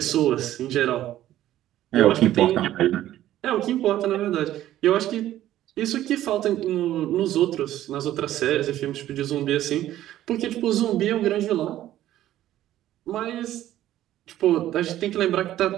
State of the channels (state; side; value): quieter; left; 13.3 dB